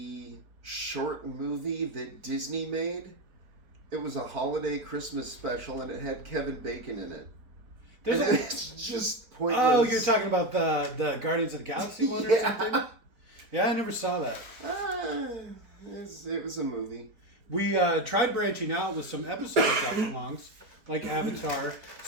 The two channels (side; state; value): left; late; 4.5 ms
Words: short movie that Disney made. It was a holiday Christmas special, and it had Kevin Bacon in it. It's just pointless. Oh, you're talking about the Guardians of the Galaxy one or something? Yeah, I never saw that. It was a movie. We tried branching out with some episode watch-alongs, like Avatar,